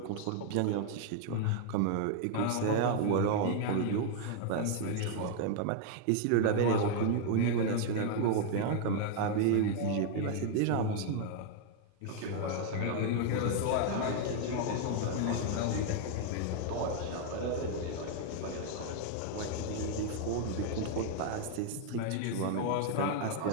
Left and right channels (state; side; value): different; both; correlation 0.00